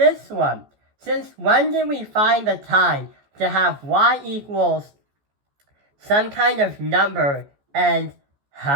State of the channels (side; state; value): left; late; 14 ms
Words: one? Since when did we find the time to have y equals some kind of number and,